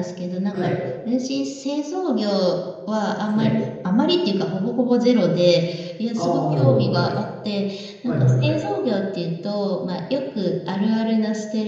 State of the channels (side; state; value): both; identical; correlation 1.00